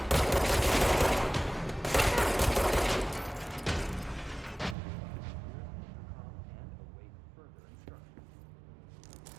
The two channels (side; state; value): left; drops out; at 4.8 s